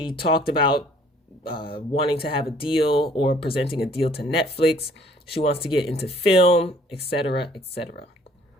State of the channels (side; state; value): both; normal; correlation 0.58